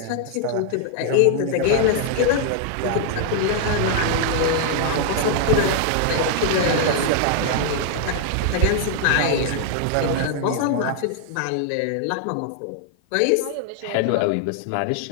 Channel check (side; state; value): both; different; correlation 0.00